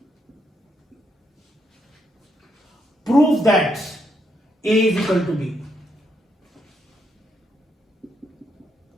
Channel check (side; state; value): both; normal; correlation 0.77